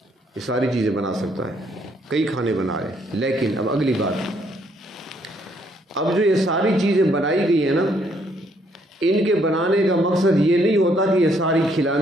یہ ساری چیزیں بنا سکتا ہے، کئی کھانے بنا لے. لیکن اب اگلی بات، اب جو یہ ساری چیزیں بنائی گئی ہیں نا، ان کے بنانے کا مقصد یہ نہیں ہوتا کہ یہ ساری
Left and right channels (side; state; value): both; normal; correlation 0.69